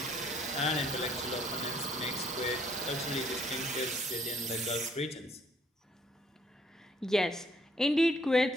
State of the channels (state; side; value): normal; both; correlation 0.65